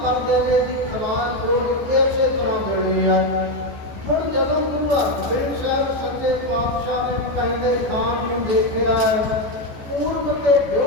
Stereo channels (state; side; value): late; left; 14 ms